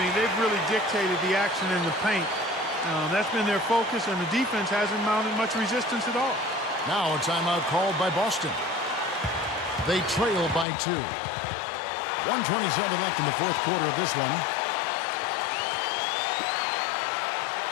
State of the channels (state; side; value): drops out; right; at 10.7 s